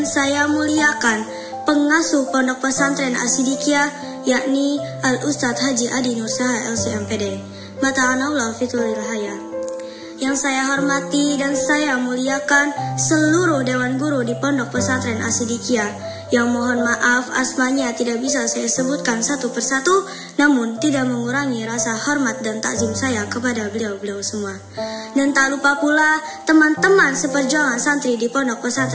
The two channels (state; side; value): identical; both; correlation 1.00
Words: saya muliakan pengasuh Pondok Pesantren As-Siddiqiyah, yakni Al-Ustadz Haji Adi Nursaha LCMPD, Mata'anallah fituril haya. Yang saya hormati dan saya muliakan seluruh Dewan Guru di Pondok Pesantren As-Siddiqiyah, yang mohon maaf asmanya tidak bisa saya sebutkan satu persatu, namun tidak mengurangi rasa hormat dan takzim saya kepada beliau-beliau semua. Dan tak lupa pula teman-teman seperjuangan santri di Pondok